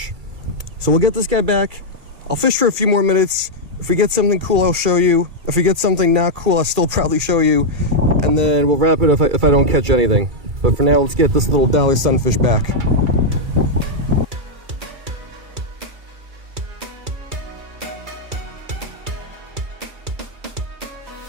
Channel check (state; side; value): late; left; 2.3 ms